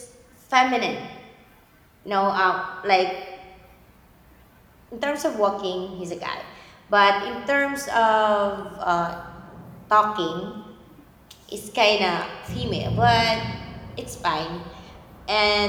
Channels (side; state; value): both; identical; correlation 1.00